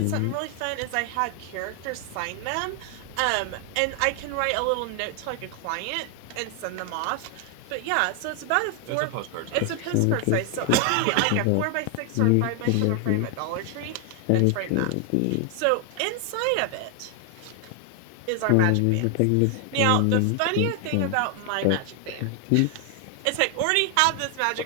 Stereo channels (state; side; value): different; both; correlation 0.00